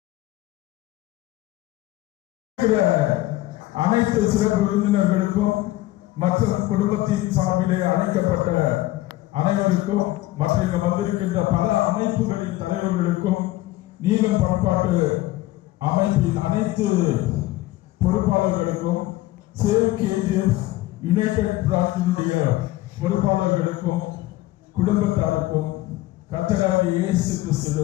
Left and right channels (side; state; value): right; quieter; 17.1 dB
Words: அனைத்து சிறப்பு விருந்தினர்களுக்கும் மற்றும் குடும்பத்தின் சார்பிலே அழைக்கப்பட்ட அனைவருக்கும் மற்றும் இங்கு வந்திருக்கின்ற பல அமைப்புகளின் தலைவர்களுக்கும் நீலம் பண்பாட்டு அமைப்பின் அனைத்து பொறுப்பாளர்களுக்கும், சேவ் கேஜிஎஃப் யுனைடெட் பிரார்த்தனுடைய பொறுப்பாளர்களுக்கும் குடும்பத்தாருக்கும் கர்த்தராகிய இயேசு